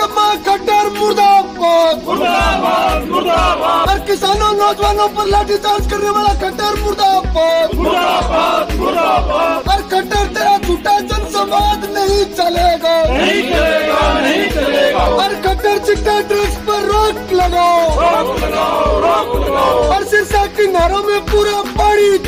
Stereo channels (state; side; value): identical; both; correlation 1.00